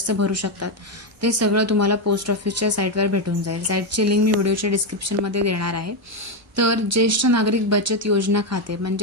भरू शकतात, ते सगळं तुम्हाला पोस्ट ऑफिसच्या साईटवर भेटून जाईल. साईटची लिंक मी व्हिडिओच्या डिस्क्रिप्शनमध्ये देणार आहे. तर ज्येष्ठ नागरिक बचत योजना खाते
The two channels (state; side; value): normal; both; correlation 0.07